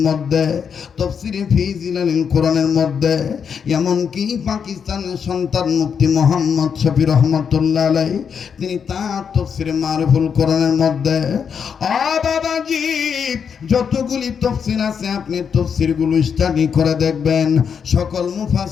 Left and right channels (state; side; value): quieter; right; 6.9 dB